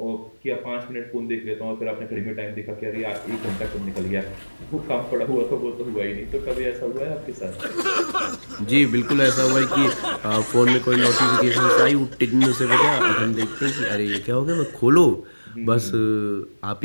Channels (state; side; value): inverted; both; correlation -1.00